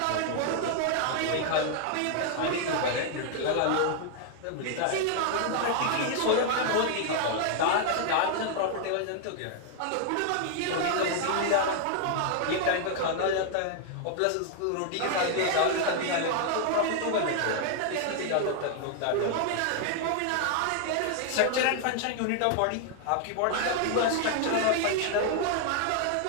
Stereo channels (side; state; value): both; different; correlation 0.00